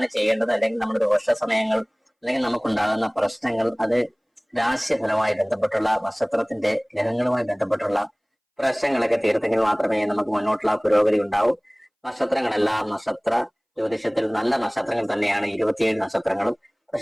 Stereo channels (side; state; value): both; identical; correlation 1.00